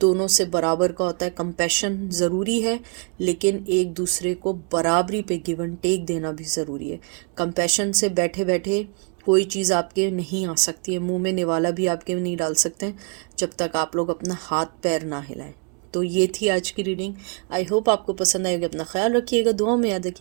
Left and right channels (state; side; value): quieter; left; 39.0 dB